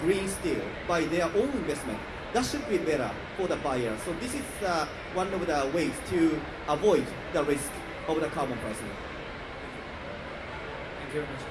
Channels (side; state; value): both; identical; correlation 1.00